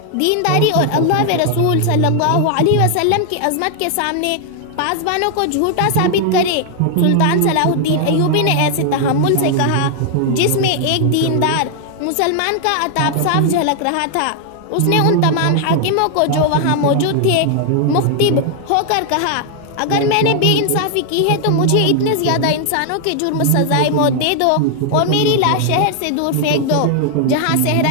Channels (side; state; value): both; different; correlation 0.00